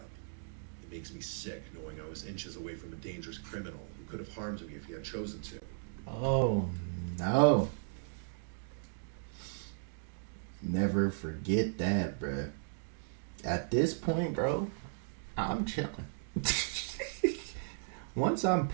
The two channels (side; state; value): left; silent; digital silence